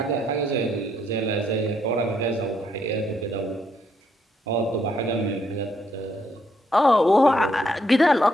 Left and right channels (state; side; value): normal; both; correlation 0.73